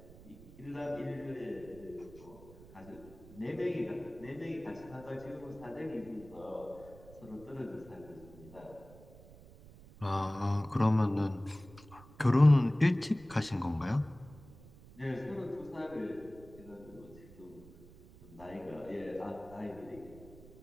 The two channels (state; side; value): noise; right; rumble, 20 dB below the sound